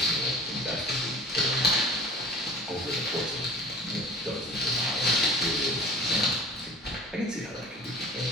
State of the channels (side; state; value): both; normal; correlation 0.43